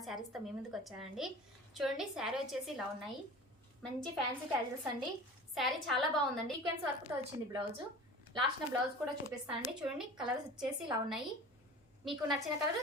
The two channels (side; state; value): both; normal; correlation 0.38